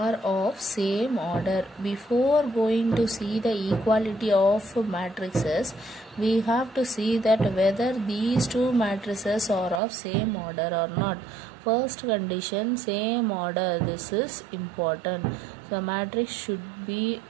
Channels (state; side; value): drops out; left; at 9.8 s